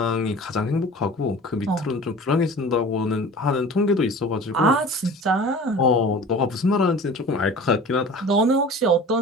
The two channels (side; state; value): both; normal; correlation 0.40